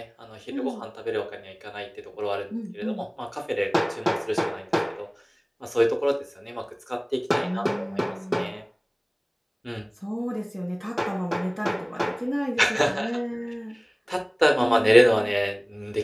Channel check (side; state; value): both; identical; correlation 1.00